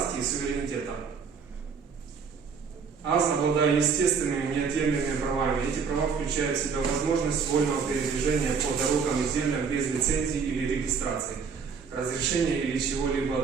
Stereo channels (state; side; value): quieter; left; 5.8 dB